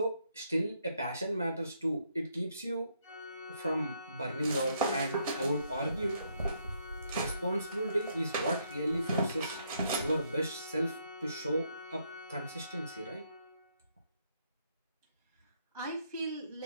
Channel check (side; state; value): both; inverted; correlation -0.74